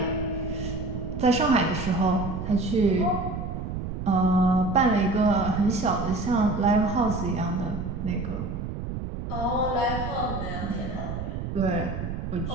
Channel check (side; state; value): right; noise; rumble, 5 dB below the sound